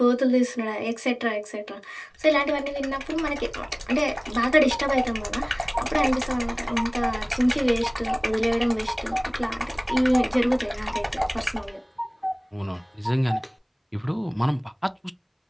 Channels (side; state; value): both; identical; correlation 1.00